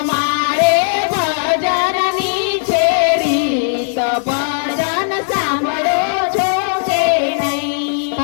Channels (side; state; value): right; silent; digital silence